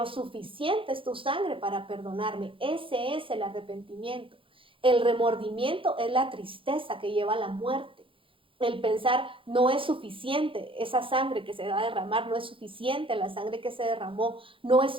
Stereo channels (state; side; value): late; left; 0.25 ms